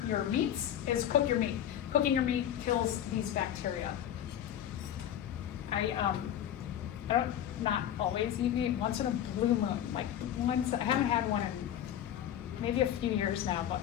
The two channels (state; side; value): quieter; right; 10.6 dB